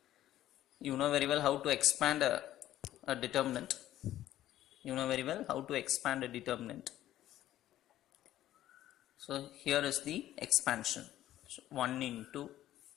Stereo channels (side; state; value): right; quieter; 13.3 dB